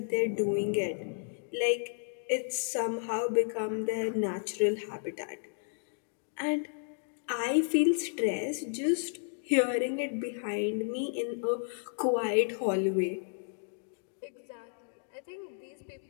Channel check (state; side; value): silent; right; digital silence